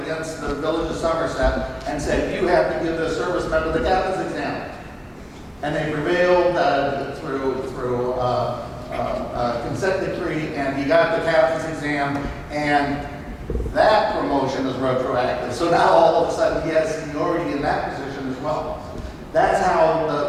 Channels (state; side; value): identical; both; correlation 1.00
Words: against the Village of Somerset and said, "You have to give the service member the captain's exam." And they prevailed through consent decree, and he got the captain's exam, and that promotion is retroactive. So now all of a sudden he has seniority in that position as well. That's how